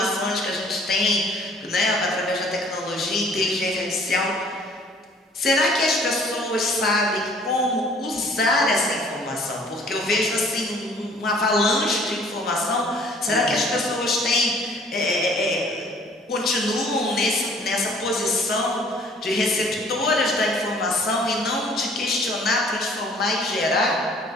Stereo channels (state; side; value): normal; both; correlation 0.55